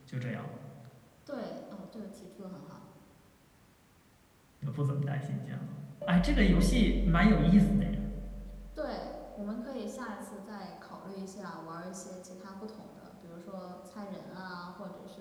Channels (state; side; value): identical; both; correlation 1.00